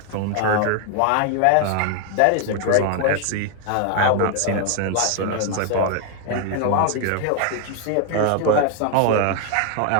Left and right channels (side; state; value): both; different; correlation 0.00